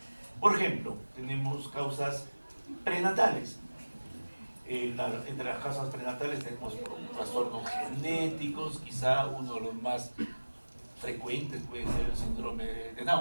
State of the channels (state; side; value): inverted; both; correlation -1.00